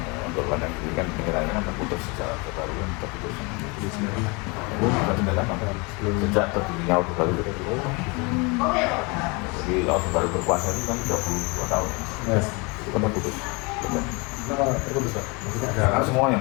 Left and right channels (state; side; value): quieter; right; 29.0 dB